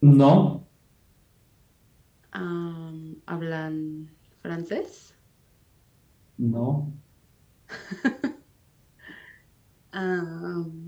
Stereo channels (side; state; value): both; identical; correlation 1.00